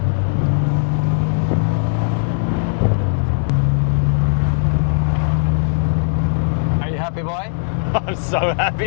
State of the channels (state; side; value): silent; right; digital silence